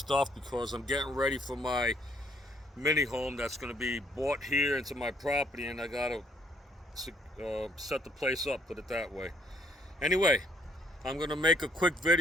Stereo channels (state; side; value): normal; both; correlation 0.67